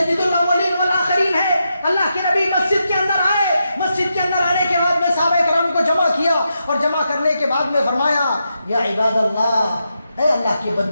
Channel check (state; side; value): inverted; both; correlation -0.85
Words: الاولین والآخرین ہے. اللہ کے نبی مسجد کے اندر آئے. مسجد کے اندر آنے کے بعد میں صحابہ کرام کو جمع کیا اور جمع کرنے کے بعد میں فرمایا یا عباد اللہ، اے اللہ کے